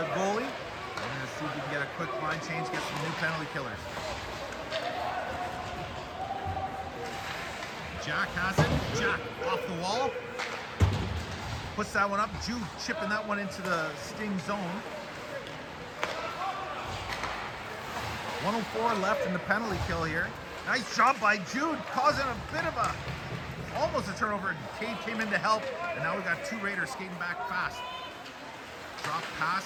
goalie. We're going to see if we can get a quick line change, get some new penalty killers. Jack has it. Jack off the wall. Puts that one up. Jude chipping that one into the Sting zone. 1:04 left in the penalty kill here. Nice job by Jude, causing a bit of almost a turnover. Cade came in to help, and now we got two Raiders skating back fast. Drop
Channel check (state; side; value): identical; both; correlation 1.00